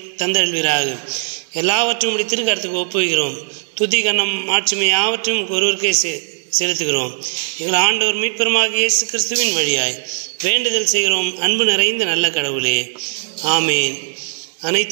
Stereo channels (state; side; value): silent; left; digital silence